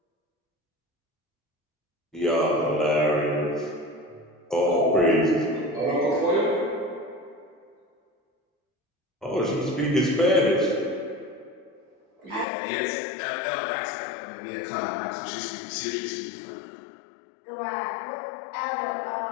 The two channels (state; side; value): drops out; right; at 12.5 s